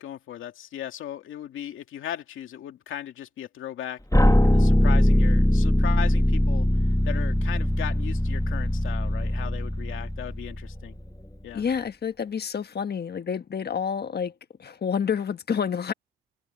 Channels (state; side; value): normal; both; correlation 0.89